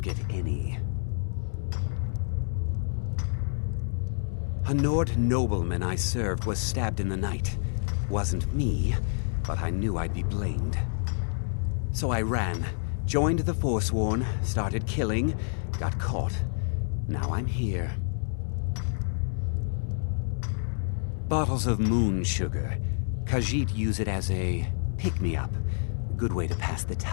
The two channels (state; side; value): silent; right; 59 dB below the other